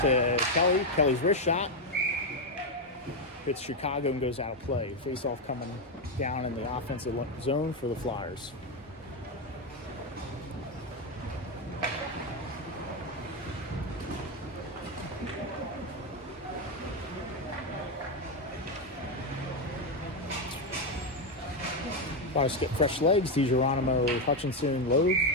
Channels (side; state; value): both; normal; correlation 0.07